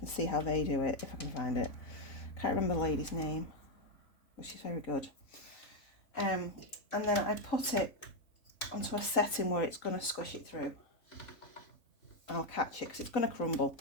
see how they do it if I can find it. I can't remember the lady's name, but she's very good. And then I put it onto a setting where it's going to squish it through. And I'll catch it because it's going to crumble.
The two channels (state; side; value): late; right; 3.5 ms